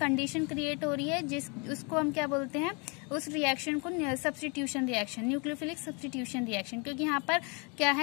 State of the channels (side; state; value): right; quieter; 33.0 dB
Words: क्रिएट हो रही है उसको हम क्या बोलते हैं, उस रिएक्शन को substitution reaction, nucleophilic substitution reaction. क्योंकि यहाँ पर क्या